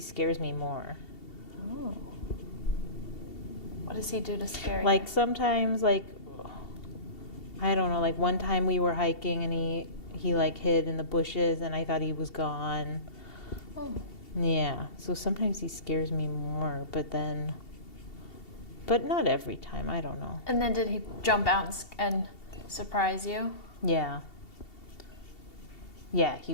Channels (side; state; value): right; late; 2.7 ms